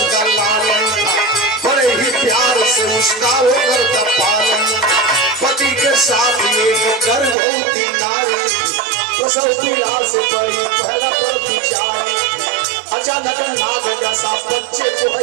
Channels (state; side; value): drops out; left; at 7.4 s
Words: का लालन था, बड़े ही प्यार से उसका वो करता पालन। पति के साथ एक गर्भवती नारी, प्रसव पीड़ा से बड़ी पहला पर विचारी। अचानक नाग जैसा बच्चे को